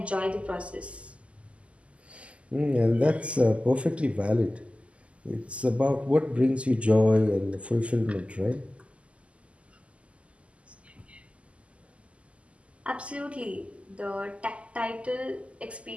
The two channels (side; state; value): left; late; 0.060 ms